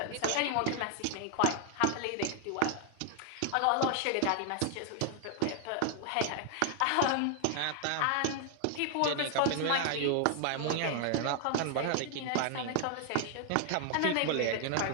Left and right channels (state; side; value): different; both; correlation 0.00